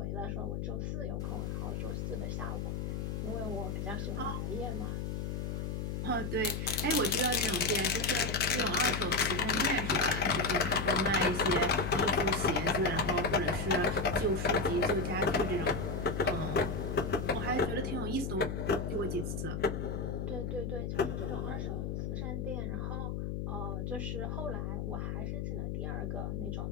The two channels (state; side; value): noise; left; hum, 2 dB below the sound